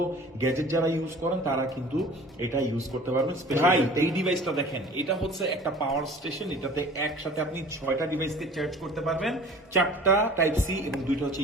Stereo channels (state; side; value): normal; both; correlation 0.45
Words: গ্যাজেট যারা ইউজ করেন তারা কিন্তু এটা ইউজ করতে পারবেন। ভাই এই ডিভাইসটা দেখেন, এটা হচ্ছে একটা পাওয়ার স্টেশন। এটাতে একসাথে আপনি 6টা ডিভাইসকে চার্জ করতে পারবেন, 4টা টাইপ সি এবং 2টা হচ্ছে